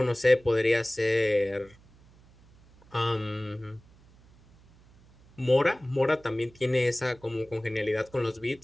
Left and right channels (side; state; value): right; noise; hum, 27 dB below the sound